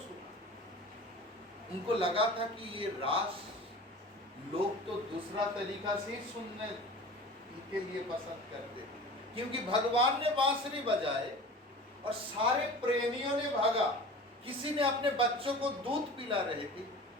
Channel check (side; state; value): both; normal; correlation 0.38